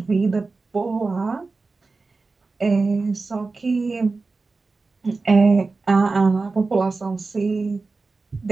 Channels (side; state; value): left; quieter; 3.9 dB